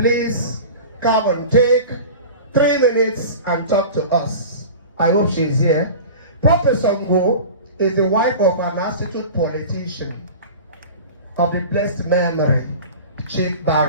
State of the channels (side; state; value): both; inverted; correlation -0.35